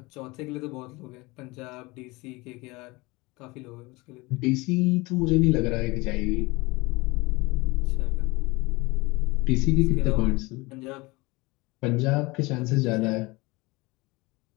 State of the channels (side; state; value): right; quieter; 23.6 dB